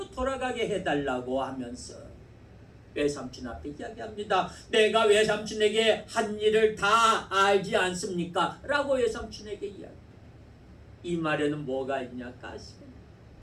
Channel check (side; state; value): both; identical; correlation 1.00